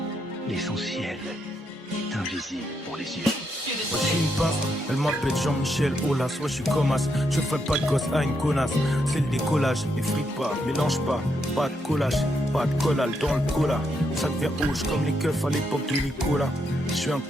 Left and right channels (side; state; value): both; normal; correlation 0.79